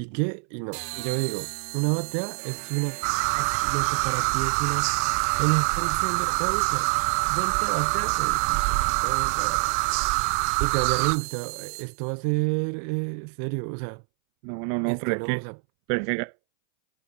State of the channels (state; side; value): silent; left; 62 dB below the other